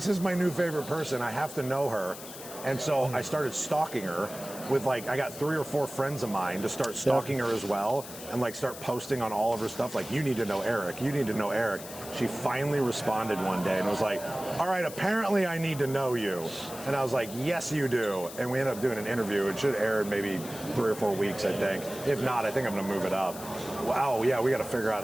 is my new favorite person. I have to know her. And so I started stalking her. with like, I got 3 or 4 friends of mine to start stalking her as well, and like start posting on all of her stuff, like, you need to know Eric, you need to know Eric. She finally responded one day and was like, all right, apparently I need to know you. And I was like, yes, you do. And we ended up doing an interview. It should air in maybe 3 or 4 weeks, I think. If not, I think I'm gonna move it up. Wow, yeah, we gotta figure out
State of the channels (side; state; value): left; noise; hiss, 13 dB below the sound